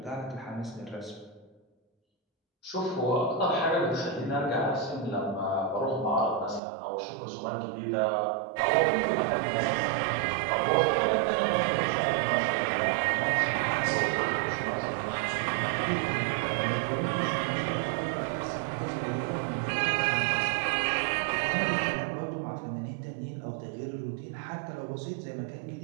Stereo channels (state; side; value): drops out; left; at 6.6 s